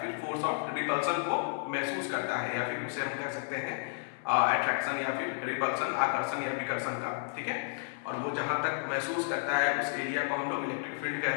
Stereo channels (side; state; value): right; silent; digital silence